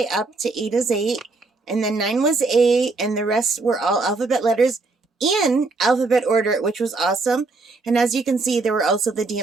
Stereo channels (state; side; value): quieter; left; 3.6 dB